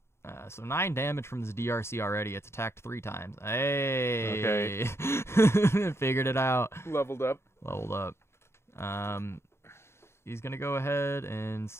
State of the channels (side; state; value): right; late; 0.12 ms